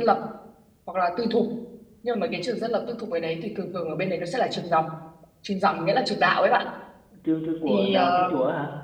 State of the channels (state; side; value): identical; both; correlation 1.00